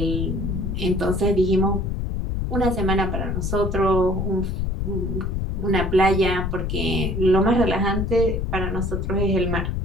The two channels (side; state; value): left; noise; rumble, 1 dB below the sound